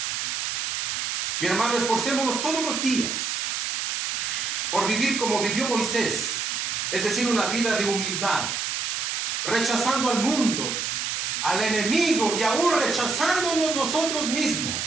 Mi hermano, esforcémonos todos los días por vivir como vivió Moisés, es decir, una vida de humildad, rechazando al mundo, al enemigo y aún rechazándonos nosotros mismos,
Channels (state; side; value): noise; right; hiss, 1 dB below the sound